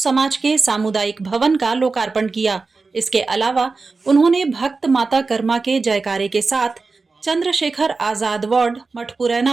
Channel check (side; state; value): left; quieter; 4.1 dB